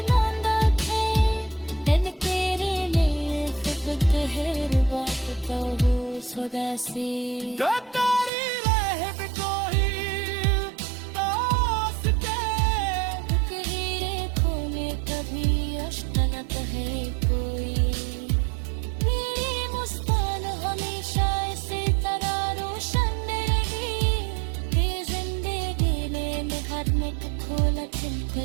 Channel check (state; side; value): drops out; left; at 8.3 s